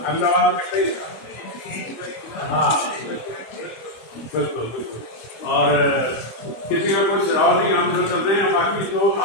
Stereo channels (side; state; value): right; late; 25 ms